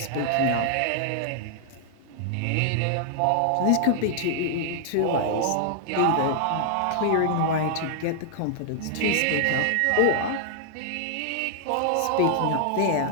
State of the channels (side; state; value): both; different; correlation -0.01